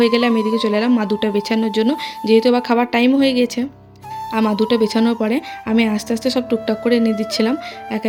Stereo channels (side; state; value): both; identical; correlation 1.00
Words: গেলে আমি এদিকে চলে এলাম মাদুটা বেছানোর জন্য, যেহেতু এবার খাবার টাইম হয়ে গেছে। আর মাদুটা বেছানোর পরে আমি আস্তে আস্তে সব টুকটাক করে এনে দিচ্ছিলাম এক